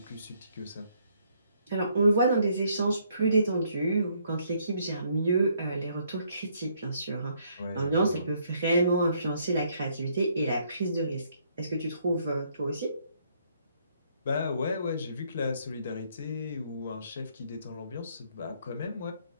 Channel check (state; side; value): inverted; both; correlation -0.69